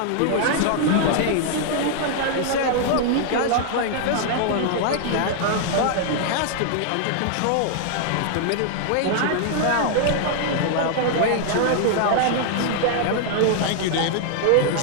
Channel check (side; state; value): both; different; correlation 0.00